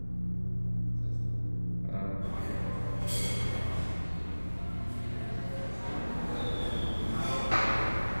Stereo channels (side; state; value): both; inverted; correlation -1.00